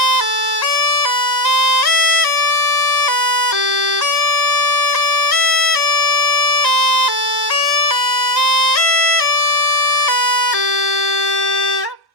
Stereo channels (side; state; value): left; late; 1.1 ms